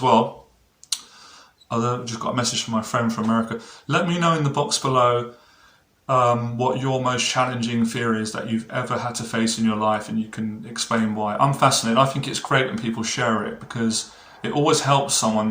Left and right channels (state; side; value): identical; both; correlation 1.00